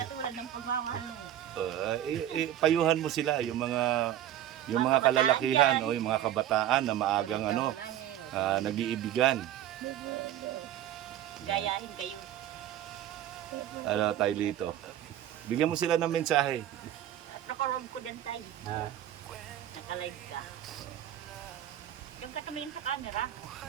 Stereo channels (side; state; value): left; quieter; 11.7 dB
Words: ng pagmamahal mo. Payuhan mo sila, yung mga kalalakihan o yung mga kabataan na maagang nag-iibigan. Gayahin kayo. Ano, Tay Lito? Bigyan mo sila ng mensahe. At nakaroon ko din tayo. Ha? Naka-live ka. Diyan ka tumingin sa camera.